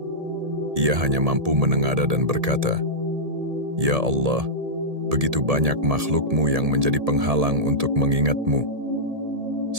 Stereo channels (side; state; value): left; late; 1.7 ms